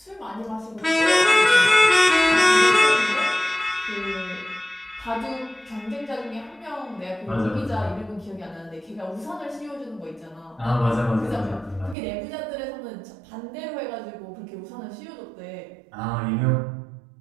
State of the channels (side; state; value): left; drops out; at 12.0 s